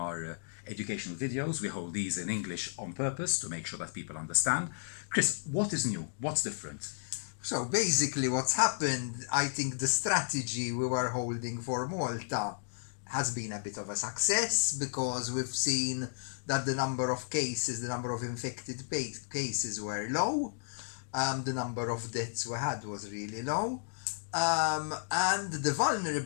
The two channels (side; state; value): right; silent; digital silence